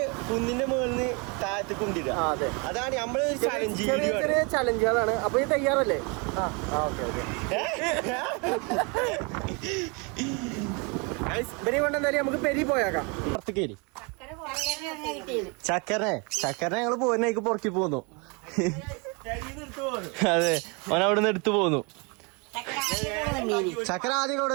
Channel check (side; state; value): left; quieter; 31.4 dB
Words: കുന്നിന്റെ മുകളിൽ താഴത്ത് കൊണ്ടിടുക. അതെ, അതാണ് നമ്മള് ചലഞ്ച് ചെറിയ ചെറിയ ചലഞ്ചുകളാണ്. അപ്പൊ ഈ തയ്യാറല്ലേ? Okay okay. ഇവരെ കൊണ്ട് എന്തായാലും നമുക്ക് പെരി പോയേക്കാം. പുറത്തേക്ക് ചക്കരനെ ഞങ്ങള് പോരുന്നേക്ക് പുറക്കി പോന്നു. അതെ, ഓൻ അവിടെ നിന്ന് എടുത്തു പോന്നു. ചക്കര ആദ്യം ഇവിടെ